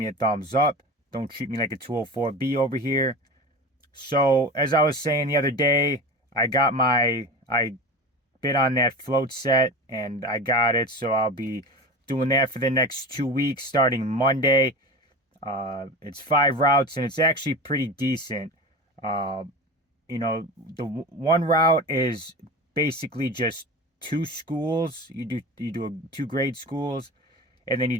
a thumbs up. Don't treat me like a 204B over here. So, as I was saying the other day, I bid on that float set and I got it. So I'll be doing that for the next 2 weeks starting Monday. It's 5 routes and it's actually pretty decent. Uh, the one route is basically just two schools. You do two grade schools, and then you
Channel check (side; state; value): both; normal; correlation 0.29